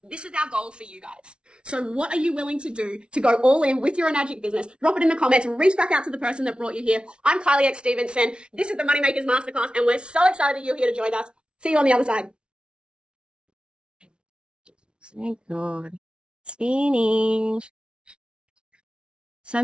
This is our goal for you guys. So what are you willing to do to go all in with your NAGIC business? Drop it in the comments. Reach back out to the person that brought you here. I'm Kylie X. Stevenson. This is the Moneymakers Masterclass, and we're so excited that you're here to join us. See you on the other side. Thank God. Spinning. So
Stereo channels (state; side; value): late; left; 0.057 ms